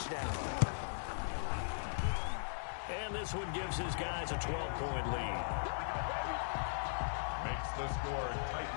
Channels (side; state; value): right; silent; digital silence